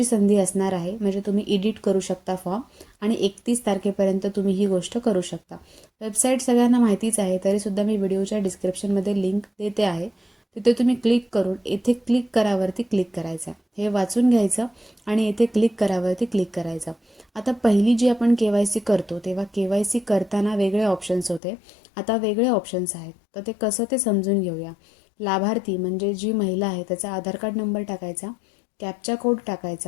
संधी असणार आहे, म्हणजे तुम्ही एडिट करू शकता फॉर्म आणि 31 तारखेपर्यंत तुम्ही ही गोष्ट करू शकता. वेबसाईट सगळ्यांना माहितीच आहे, तरीसुद्धा मी व्हिडिओच्या डिस्क्रिप्शनमध्ये लिंक देते आहे. तिथे तुम्ही क्लिक करून येथे क्लिक करावरती क्लिक करायचं. हे वाचून घ्यायचं आणि येथे क्लिक करावरती क्लिक करायचं. आता पहिली जी आपण के-वाय-सी करतो तेव्हा के-वाय-सी करताना वेगळे ऑप्शन्स होते, आता वेगळे ऑप्शन्स आहेत. तर ते कसं ते समजून घेऊया. लाभार्थी म्हणजे जी महिला आहे त्याचा आधार कार्ड नंबर टाकायचा, कॅप्चा कोड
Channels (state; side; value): drops out; right; at 21.4 s